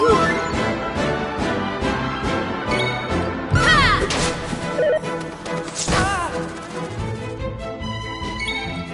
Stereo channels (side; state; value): both; identical; correlation 1.00